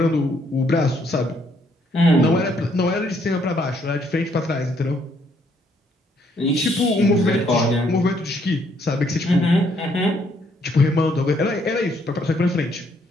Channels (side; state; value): both; normal; correlation 0.69